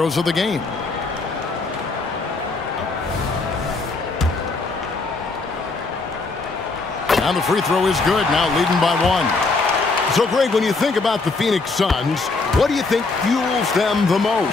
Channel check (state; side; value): quieter; right; 3.8 dB